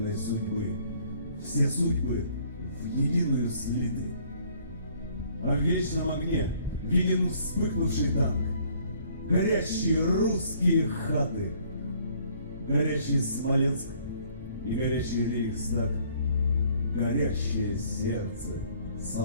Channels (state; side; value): inverted; both; correlation -0.60